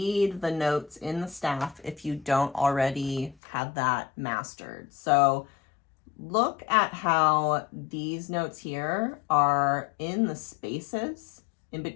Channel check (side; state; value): right; drops out; at 3.4 s